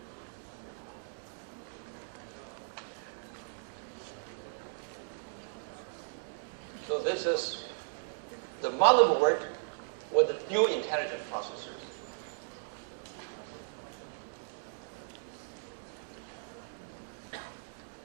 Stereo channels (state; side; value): silent; left; digital silence